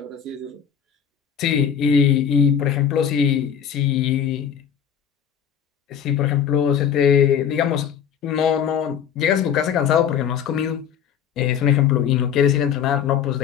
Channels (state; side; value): quieter; right; 8.3 dB